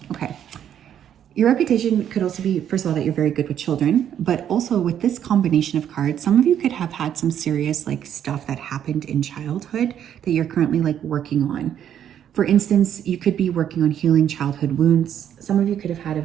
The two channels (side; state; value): left; quieter; 9.8 dB